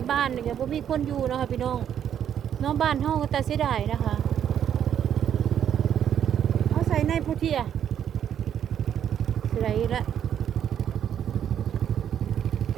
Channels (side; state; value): left; quieter; 9.4 dB